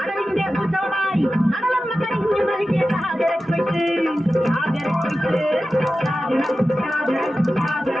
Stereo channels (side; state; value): both; normal; correlation 0.94